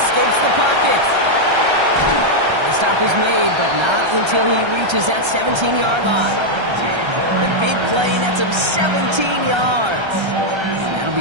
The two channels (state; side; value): late; left; 1.3 ms